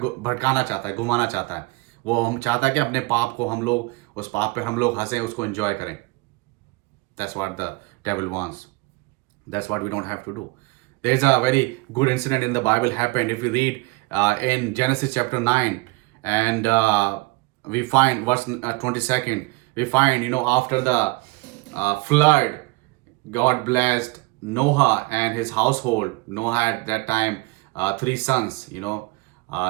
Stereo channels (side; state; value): left; quieter; 23.6 dB